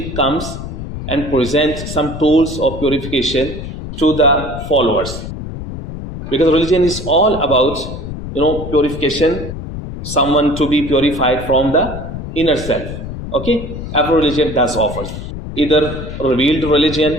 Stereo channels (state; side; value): noise; left; rumble, 8 dB below the sound